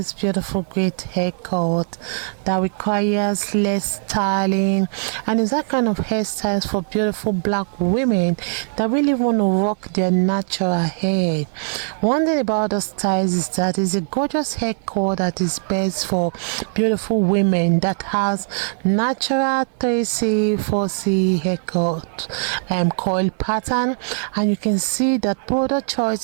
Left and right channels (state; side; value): silent; left; digital silence